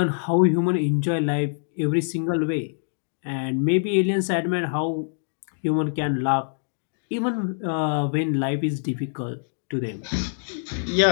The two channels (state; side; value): silent; right; digital silence